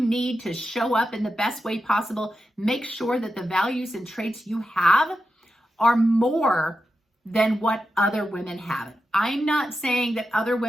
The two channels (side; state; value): both; normal; correlation 0.89